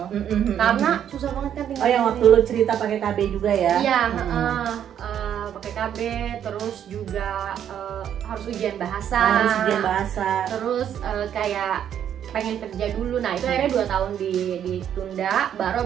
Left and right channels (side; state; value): left; quieter; 9.6 dB